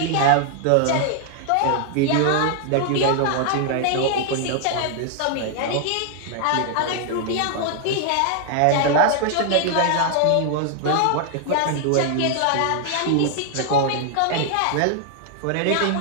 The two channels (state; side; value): different; both; correlation 0.00